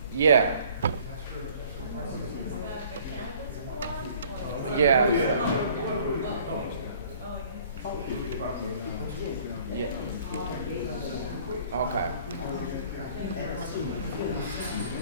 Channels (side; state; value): both; inverted; correlation -0.54